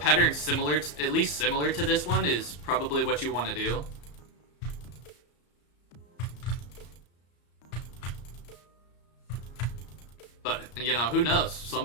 similar, at least similar to this one, is probably what you want to do. But, you know, who knows?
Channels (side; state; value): right; late; 34 ms